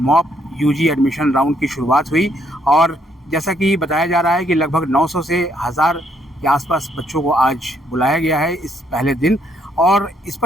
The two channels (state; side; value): normal; both; correlation 0.71